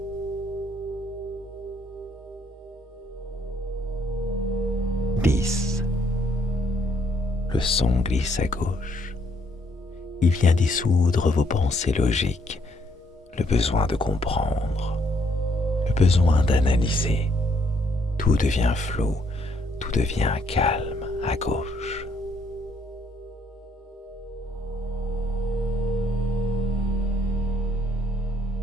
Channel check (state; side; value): normal; both; correlation 0.69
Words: 10. Le son glisse à gauche. Il vient dissoudre vos pensées logiques, le besoin de comprendre, le besoin d'analyser. Tout devient flou, tout devient calme à gauche.